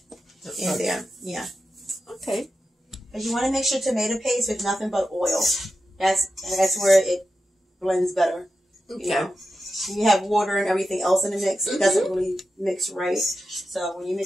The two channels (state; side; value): normal; both; correlation 0.90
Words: in there. Yeah. Okay. But you want to make sure tomato paste with nothing but oil. That's where it blends better. Okay. You know? You have water and everything else in the mix. It doesn't really mix right. So when you